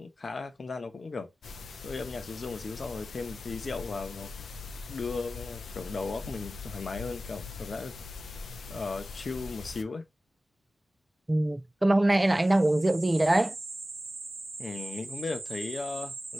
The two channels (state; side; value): normal; both; correlation 0.95